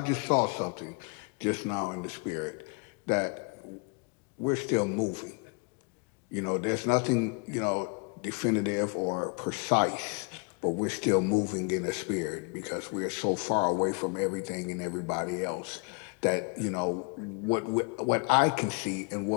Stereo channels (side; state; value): right; quieter; 34.3 dB